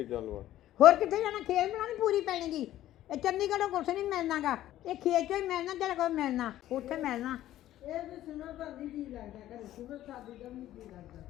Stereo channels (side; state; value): right; quieter; 13.5 dB